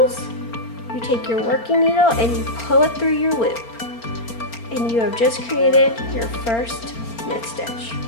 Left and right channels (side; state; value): right; late; 4.4 ms